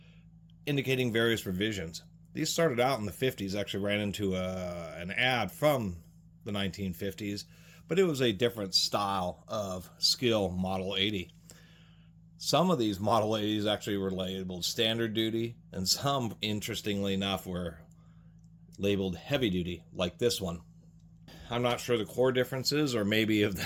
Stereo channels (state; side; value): identical; both; correlation 1.00